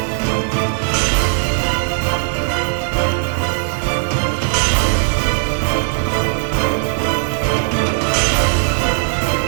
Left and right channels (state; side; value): silent; left; 64 dB below the other